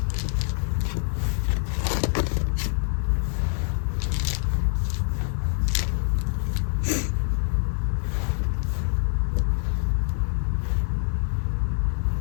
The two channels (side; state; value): right; silent; 61 dB below the other